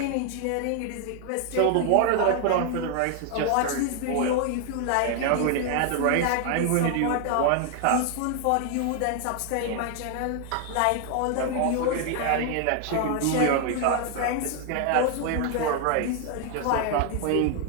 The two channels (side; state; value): both; different; correlation 0.00